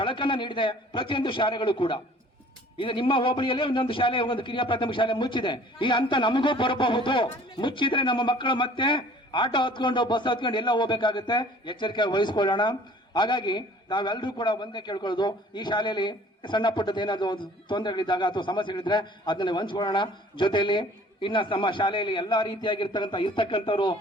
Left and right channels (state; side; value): normal; both; correlation 0.51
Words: ನೀಡಿದೆ ಪ್ರತಿಯೊಂದು ಶಾಲೆಗಳು ಕೂಡ. ಇದು ನಿಮ್ಮ ಹೋಬಳಿಯಲ್ಲೇ ಒಂದೊಂದು ಶಾಲೆ, ಒಂದು ಕಿರಿಯ ಪ್ರಾಥಮಿಕ ಶಾಲೆ ಮುಚ್ಚಿದೆ. ಈ ಹಂತ ನಮಗೂ ಬರಬಹುದು. ಮುಚ್ಚಿದ್ರೆ ನಮ್ಮ ಮಕ್ಕಳು ಮತ್ತೆ ಆಟೋ ಹತ್ಕೊಂಡು ಬಸ್ ಹತ್ಕೊಂಡು ಎಲ್ಲ ಹೋಗ್ಬೇಕಾಗುತ್ತೆ. ಎಚ್ಚರಿಕೆ ವಹಿಸ್ಕೊಳ್ಳೋಣ. ಹಾಗಾಗಿ ನಾವೆಲ್ಲರೂ ಕೂಡ ಒಂದೇ ಕೇಳ್ಕೊಳ್ಳೋದು, ಈ ಶಾಲೆಯಲ್ಲಿ ಸಣ್ಣ ಪುಟ್ಟದ ಏನಾದ್ರು ತೊಂದರೆಗಳಿದ್ದಾಗ ಅಥವಾ ಸಮಸ್ಯೆಗಳಿದ್ರೆ ಅದನ್ನ ಹಂಚ್ಕೊಳ್ಳೋಣ. ಜೊತೆಯಲ್ಲಿ ಇನ್ನ ನಮ್ಮ ಶಾಲೆಯಲ್ಲಿ ಎಲ್ಲಾ ಇರ್ತಕ್ಕಂಥವ್ರು